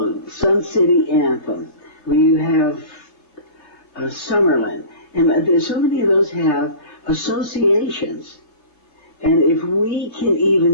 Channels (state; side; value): late; right; 3.2 ms